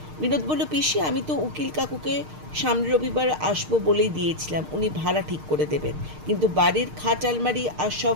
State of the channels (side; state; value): left; late; 6.5 ms